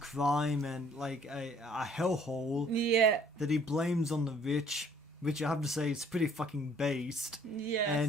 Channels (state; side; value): normal; both; correlation 0.58